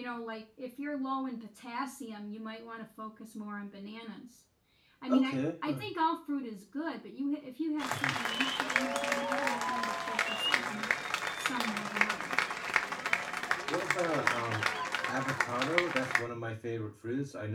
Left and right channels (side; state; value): both; identical; correlation 1.00